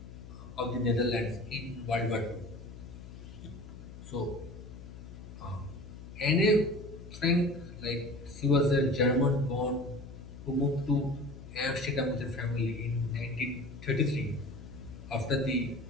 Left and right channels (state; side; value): noise; left; hum, 14 dB below the sound